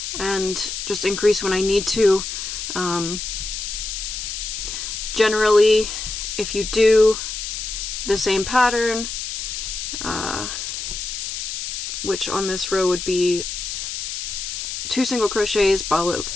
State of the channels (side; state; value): left; noise; hiss, 5 dB below the sound